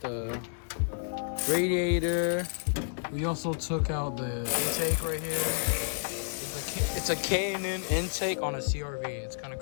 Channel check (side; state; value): right; silent; digital silence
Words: radiator. We also took out the intake right here. It's a K&N intake on a CRV. It's kind of